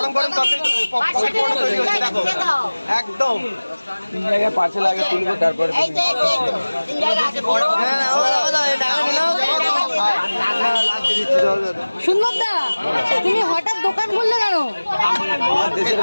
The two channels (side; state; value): both; inverted; correlation -1.00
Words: গরম তরকারি পকোড়া তৈরি হচ্ছে দেখো একদম 3 জায়গায় পার্সেল আগে তুলবো তারপরে এই তো, এই তো, এই তো। 3 জায়গায় আছে, বড়। সুন্দর দা তুমি হঠাৎ দোকান খুললে কেন দেশের